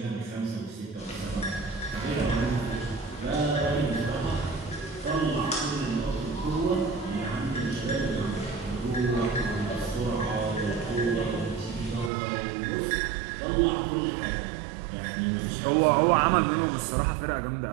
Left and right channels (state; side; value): drops out; left; at 12.1 s